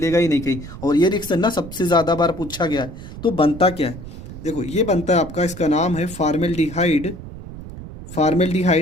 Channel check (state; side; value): noise; right; rumble, 13 dB below the sound